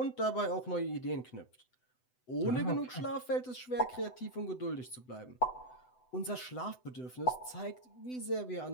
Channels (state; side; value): late; right; 7.9 ms